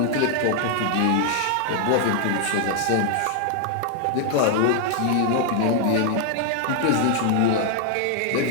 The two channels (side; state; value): both; different; correlation 0.00